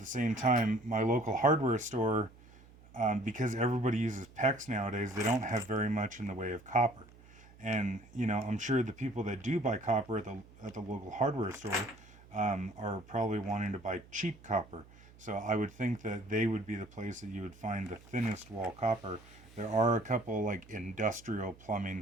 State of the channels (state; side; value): noise; right; hum, 23 dB below the sound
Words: same time, my local hardware store, because everybody uses PEX nowadays, they don't have very much in the way of copper. And, you know, I'm sure the people that do buy copper at the local hardware store are probably wanting to buy cheap copper. So I would think that they would be the place that you would find the thinnest wall copper. There are a couple like industrial